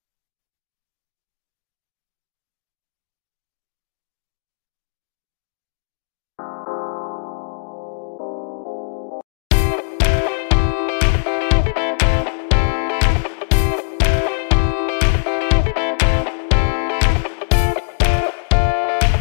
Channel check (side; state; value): right; silent; digital silence